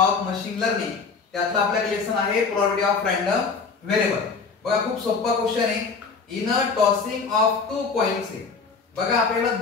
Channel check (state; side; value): quieter; right; 4.9 dB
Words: machine learning त्यातला आपल्याकडे लेसन आहे प्रोबॅबिलिटी ऑफ रँडम व्हेरिएबल। बघा खूप सोपा क्वेश्चन आहे। In a tossing of 2 coins आहे। बघा आपल्याला